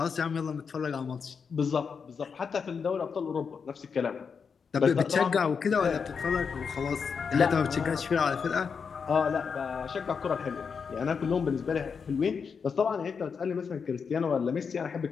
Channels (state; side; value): quieter; right; 6.0 dB